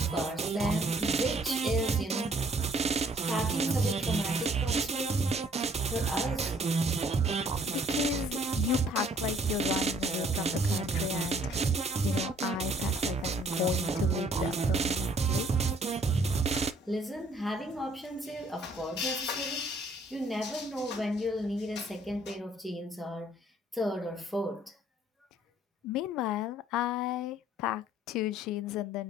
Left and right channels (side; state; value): both; normal; correlation 0.60